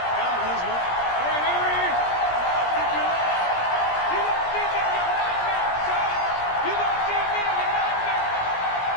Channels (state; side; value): late; right; 17 ms